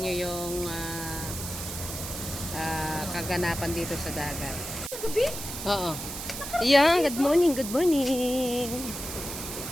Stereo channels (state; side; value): noise; right; hiss, 7 dB below the sound